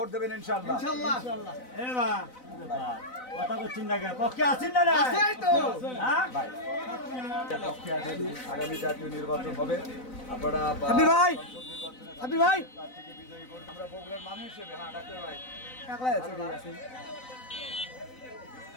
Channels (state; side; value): late; right; 4.0 ms